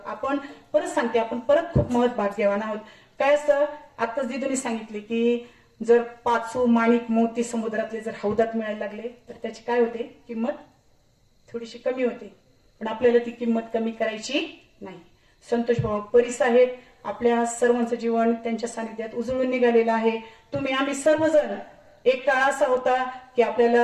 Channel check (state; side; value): identical; both; correlation 1.00